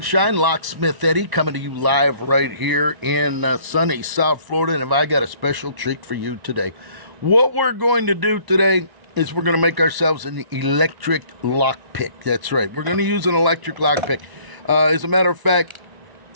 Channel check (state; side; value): late; left; 1.0 ms